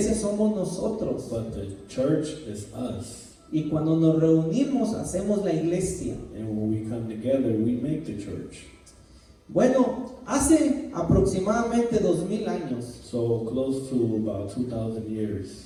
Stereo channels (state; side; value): identical; both; correlation 1.00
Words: somos nosotros. But the church is us. Y cuando nos reunimos, hacemos la iglesia. And when we come together, we make the church. Bueno, hace aproximadamente 2000 años, So close to about 2,000